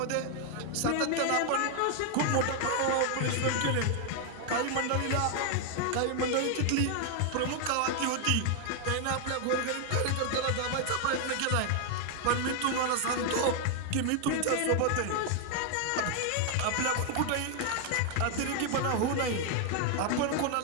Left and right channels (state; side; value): different; both; correlation 0.00